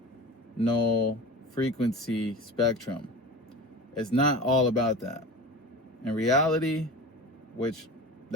frequency spectrum. It's not all about that. In reality, which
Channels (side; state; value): both; normal; correlation 0.32